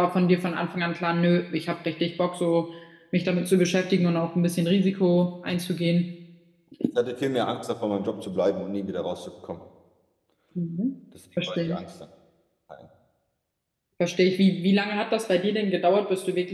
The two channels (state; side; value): identical; both; correlation 1.00